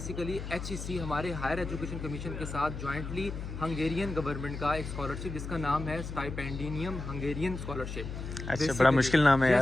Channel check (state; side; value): noise; left; hum, 7 dB below the sound